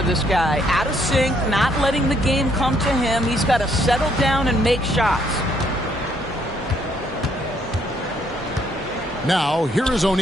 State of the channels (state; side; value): normal; both; correlation 0.69